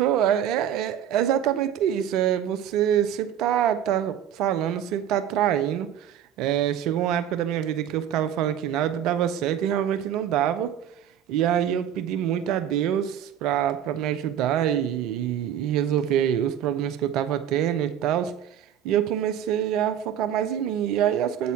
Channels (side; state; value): left; quieter; 9.9 dB